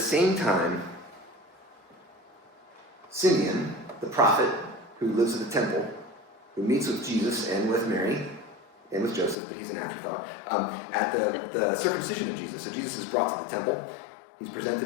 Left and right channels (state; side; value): drops out; right; at 9.3 s